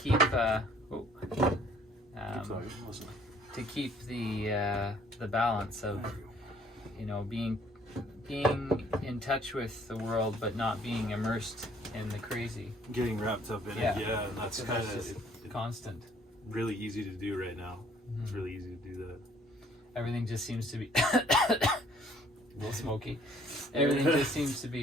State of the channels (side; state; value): both; normal; correlation 0.60